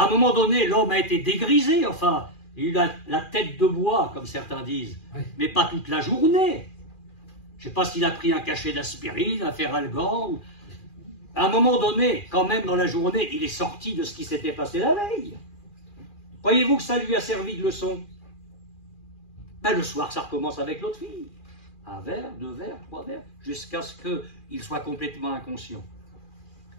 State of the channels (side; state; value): right; late; 2.4 ms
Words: un moment donné, l'homme a été dégrisé, enfin, il a la tête de bois, comme certains disent, mais pas toute la journée. Je ne sais pas s'il a pris un cachet d'aspirine, un Feralgan, ou... À un moment donné, quand même dans la journée, il est sorti de ce qui s'était passé la veille. Croyez-vous que ça lui a servi de leçon? Ben, le soir, ça recommence avec l'autre fille. 1 verre, 2 verres, 3 verres, jusqu'à ce qu'il soit complètement inconscient.